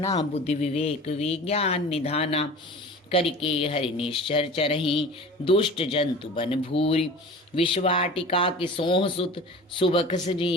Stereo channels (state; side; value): normal; both; correlation 0.39